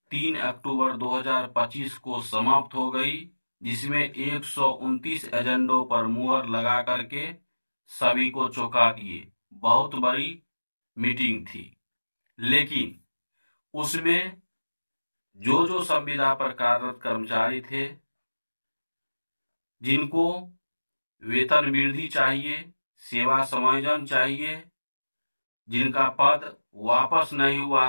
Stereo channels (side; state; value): both; inverted; correlation -1.00